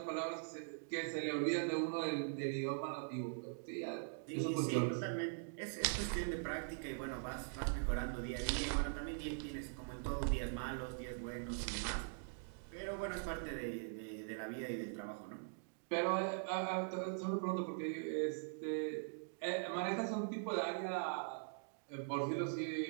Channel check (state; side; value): silent; left; digital silence